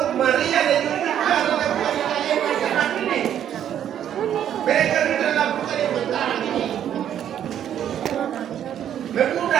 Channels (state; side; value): quieter; left; 10.1 dB